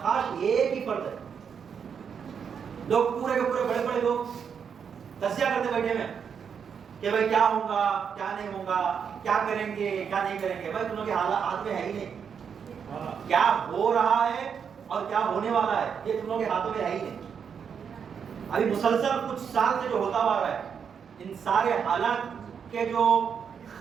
ایک ہی فرد ہے. لوگ پورے کے پورے بڑے بڑے لوگ تجزیہ کرتے بیٹھے ہیں کہ بھائی کیا ہوگا کیا نہیں ہوگا، کیا کریں گے کیا نہیں کریں گے. بھائی تم لوگ کے حالات ہاتھ میں ہے ہی نہیں. کیا ہو رہا ہے اور کیا ہونے والا ہے یہ تم لوگ کے ہاتھوں میں ہے ہی نہیں. ابھی مسلسل کچھ سال سے جو ہوتا ہوا رہا ہے، ان سارے حالات کے جو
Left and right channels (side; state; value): left; quieter; 7.0 dB